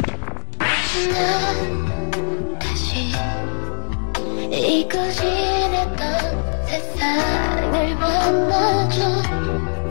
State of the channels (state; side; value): silent; right; 65 dB below the other